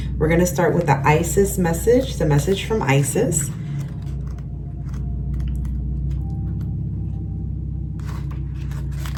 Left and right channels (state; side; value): identical; both; correlation 1.00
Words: We're going to start with the Isis message, the message from Isis.